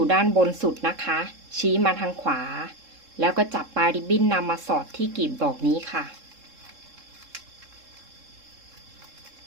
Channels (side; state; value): left; late; 3.7 ms